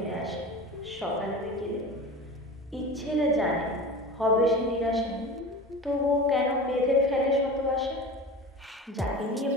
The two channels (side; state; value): both; normal; correlation 0.33